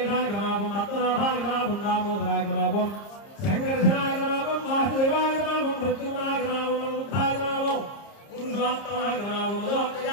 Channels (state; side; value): late; right; 30 ms